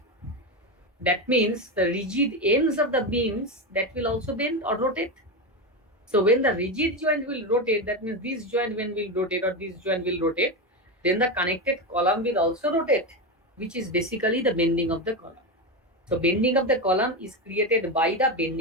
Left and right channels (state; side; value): normal; both; correlation 0.15